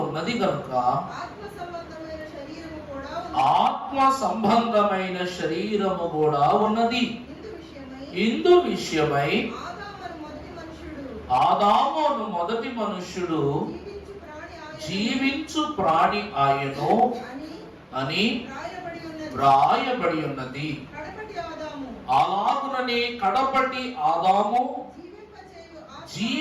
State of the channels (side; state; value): both; identical; correlation 1.00